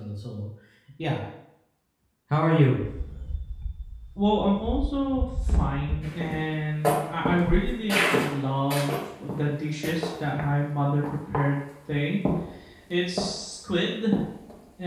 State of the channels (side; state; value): both; identical; correlation 1.00